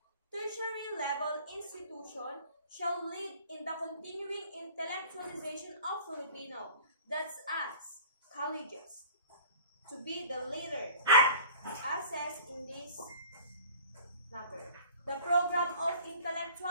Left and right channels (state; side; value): inverted; both; correlation -0.46